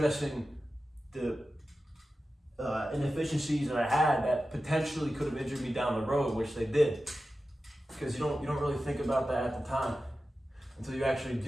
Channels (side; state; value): both; normal; correlation 0.93